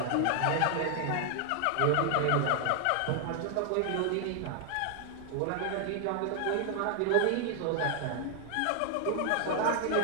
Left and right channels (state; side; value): different; both; correlation 0.00